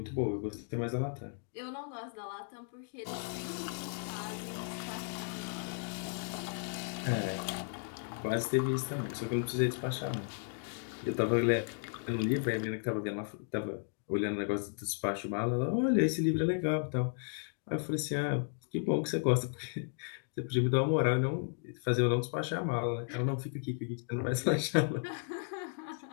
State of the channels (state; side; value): silent; right; 55 dB below the other